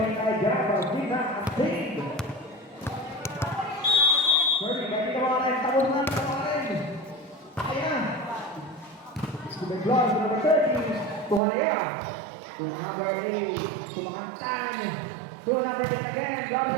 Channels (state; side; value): drops out; left; at 11.4 s